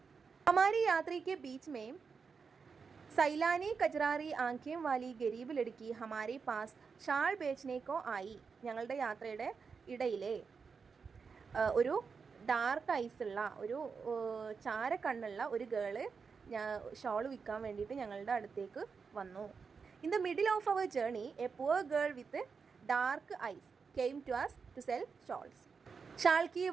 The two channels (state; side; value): quieter; left; 5.5 dB